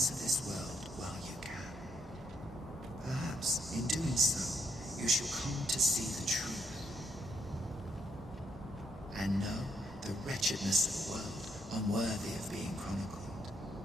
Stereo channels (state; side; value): normal; both; correlation 0.75